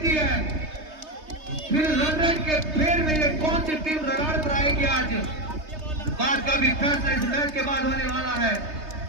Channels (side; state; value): left; late; 3.3 ms